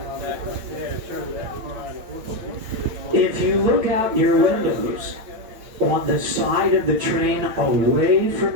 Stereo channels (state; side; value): late; left; 8.9 ms